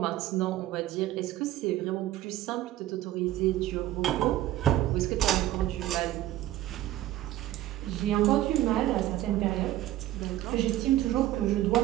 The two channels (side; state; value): left; quieter; 14.3 dB